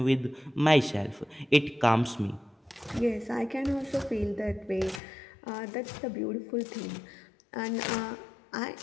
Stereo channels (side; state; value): right; drops out; at 5.0 s